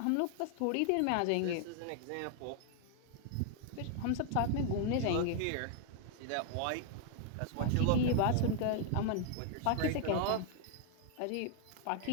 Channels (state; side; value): different; both; correlation 0.00